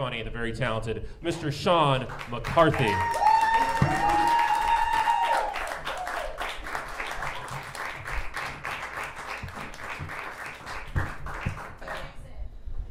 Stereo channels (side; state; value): both; identical; correlation 1.00